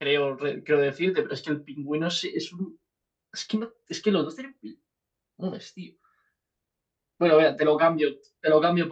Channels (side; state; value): both; identical; correlation 1.00